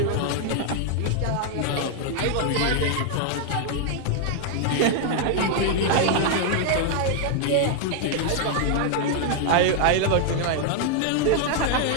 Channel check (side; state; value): both; different; correlation 0.00